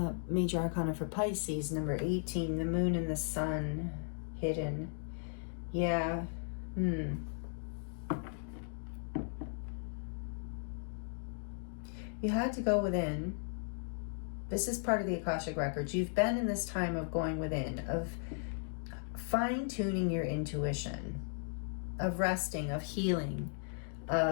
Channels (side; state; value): right; silent; digital silence